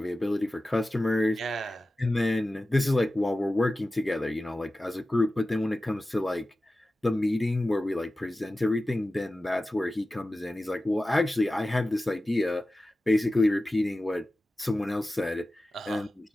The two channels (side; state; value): both; normal; correlation 0.95